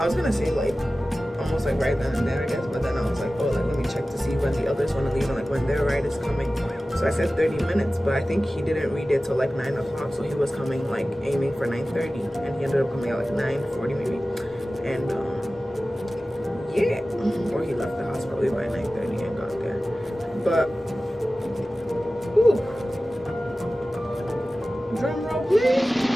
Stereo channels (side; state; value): both; normal; correlation 0.96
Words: was gonna say like almost like right then and there, I guess, but then I was like, oh, like let me check to see when the others want to leave and like when their ride is coming. So I said 30 minutes, but I think he didn't read it till like 9 o'clock, so he was coming like aiming for 9:30, and he ended up coming at like 9:40 maybe, and yeah, or he left the house probably by 9:30 and got there, but ooh, drum roll please.